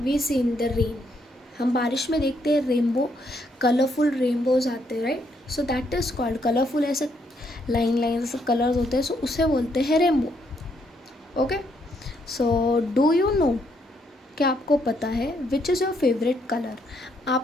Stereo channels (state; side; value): normal; both; correlation 0.73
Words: we see in the rain. हम बारिश में देखते हैं rainbow, colourful rainbows आते हैं, right? So that is called colourful, ऐसे line line ऐसे colours होते हैं, सो उसे बोलते हैं rainbow. Okay, so do you know, क्या आपको पता है which is your favourite colour?